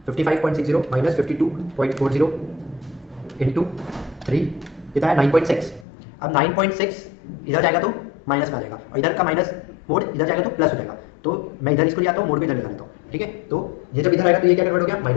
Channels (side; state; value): right; drops out; at 5.9 s